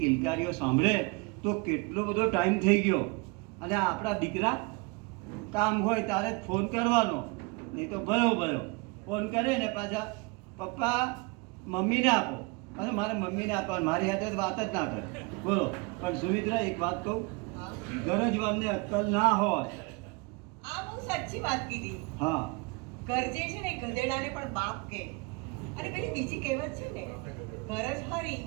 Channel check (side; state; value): left; quieter; 28.3 dB